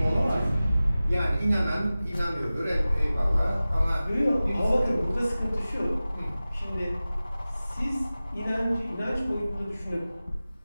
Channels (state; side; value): inverted; both; correlation -0.97